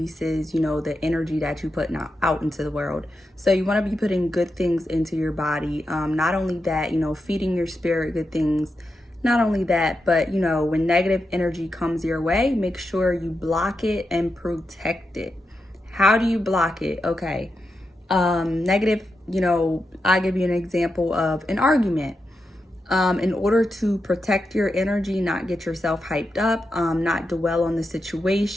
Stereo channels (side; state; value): both; normal; correlation 0.87